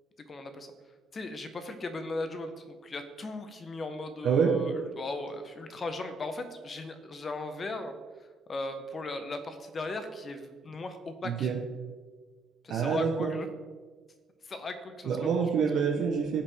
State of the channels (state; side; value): quieter; left; 3.4 dB